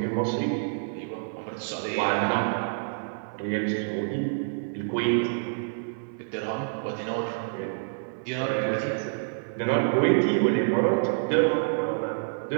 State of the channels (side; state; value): left; silent; 56 dB below the other